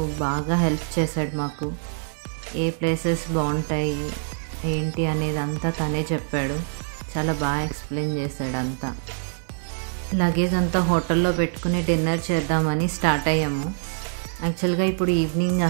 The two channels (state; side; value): silent; left; digital silence